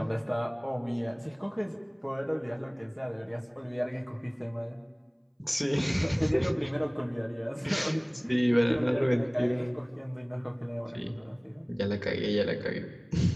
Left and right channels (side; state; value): both; identical; correlation 1.00